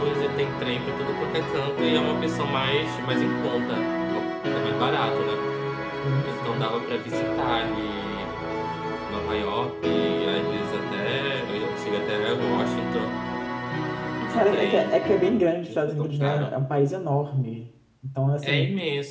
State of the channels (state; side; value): identical; both; correlation 1.00